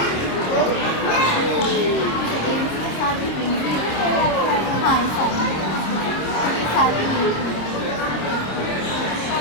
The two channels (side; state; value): right; late; 26 ms